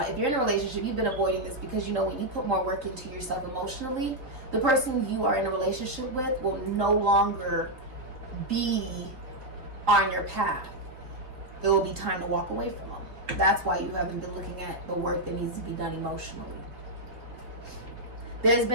you're in a relationship, you've been avoiding this because you know when you put more work into yourself emotionally, the person you are in a relationship with will no longer be on your path. It will be time to walk away from them. That's why you haven't been looking at the work that needs to be done emotionally. There's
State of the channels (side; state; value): left; late; 3.9 ms